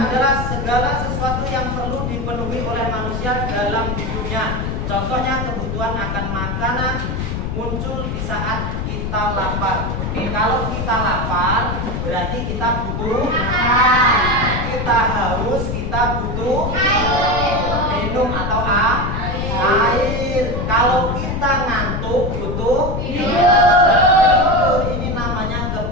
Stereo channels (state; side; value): noise; left; rumble, 3 dB below the sound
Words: segala sesuatu yang perlu dipenuhi oleh manusia dalam hidupnya. Contohnya kebutuhan akan makanan muncul di saat kita lapar. Oke, kalau kita lapar berarti kita butuh makan. Kita haus, kita butuh minum atau air. Kalau kita ngantuk butuh tidur. Ini namanya